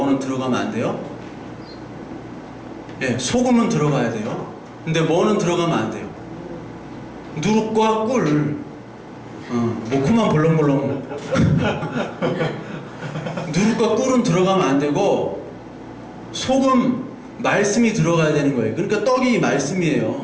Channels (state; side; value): identical; both; correlation 1.00